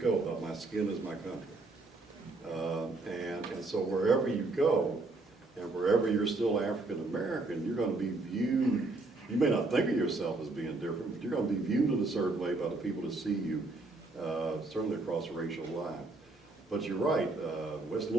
about my skin is my country. And so wherever you go, and wherever you're still African American, you're going to be viewed, you may not think of yourself as being different, but you're going to be viewed in a certain way by the people that see you, certainly across the racial line. But you're right, West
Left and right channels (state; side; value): quieter; left; 3.3 dB